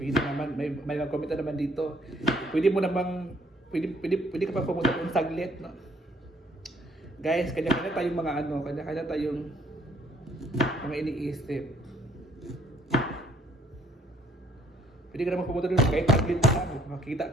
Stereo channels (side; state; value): both; normal; correlation 0.64